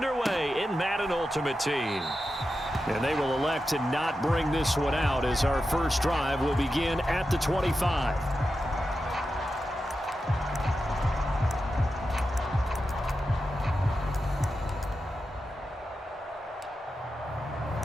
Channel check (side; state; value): both; normal; correlation 0.90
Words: in Madden Ultimate Team. And they will elect to not bring this one out as our first drive will begin at the 25.